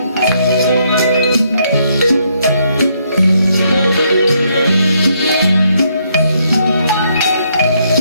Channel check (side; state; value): both; inverted; correlation -0.73